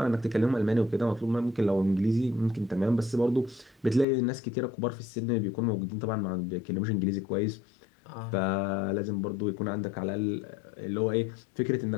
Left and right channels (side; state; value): right; drops out; at 4.0 s